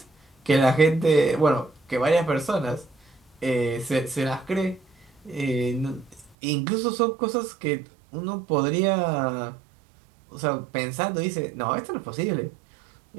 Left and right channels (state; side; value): drops out; left; at 6.4 s